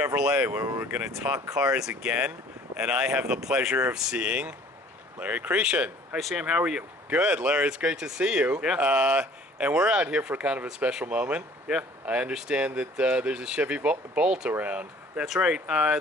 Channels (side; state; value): both; normal; correlation 0.52